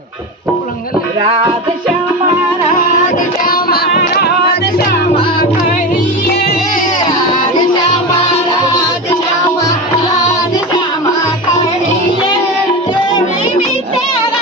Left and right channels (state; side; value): normal; both; correlation 0.22